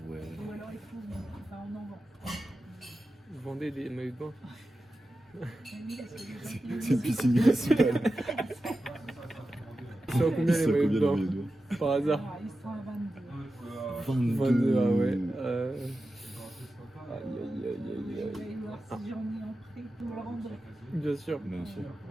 ouais. Ou alors il faut... Enfin, on en vend. Vous vendez des maillots de bain? Mais oui, parce que les gens qui- C'est une piscine municipale. Ça vaut combien les maillots de bain? Par hasard? Ah, ils sont à 22. 22, ah ouais. Je vais aller voir si j'en ai en prêt. Vous me le rendrez. Bien sûr. Bien sûr.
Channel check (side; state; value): both; normal; correlation 0.92